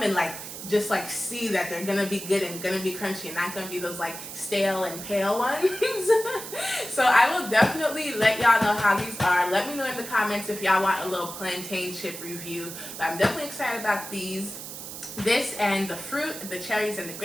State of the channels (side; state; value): right; noise; hiss, 10 dB below the sound